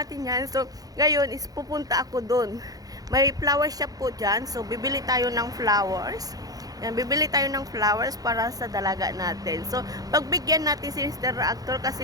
yan. So, ngayon is pupunta ako dun. May flower shop po dyan. So, bibili tayo ng flowers. Yan, bibili tayo ng flowers para sa dalaga natin. So, pagbigyan natin si Mr. Reactor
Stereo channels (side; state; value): left; late; 0.18 ms